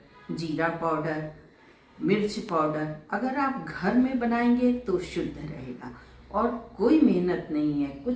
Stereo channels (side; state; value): both; identical; correlation 1.00